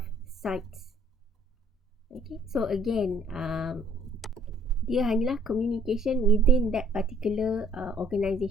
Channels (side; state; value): both; normal; correlation 0.61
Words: sites. Okay, so again, dia hanyalah communication within that particular